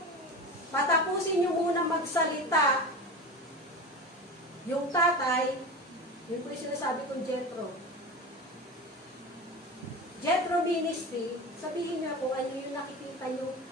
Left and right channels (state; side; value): normal; both; correlation 0.28